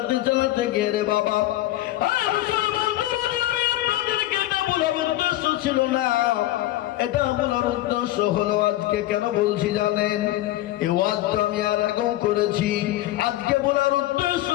চালাতে গিয়ে রে বাবা, ছিল না, এটা বলার উদ্দেশ্য হলো আজকে কেন বলছি জানেন? এই ওয়াজটা আমি আর আগেও করেছি। আজকে বলার উদ্দেশ্য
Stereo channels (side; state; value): right; quieter; 15.6 dB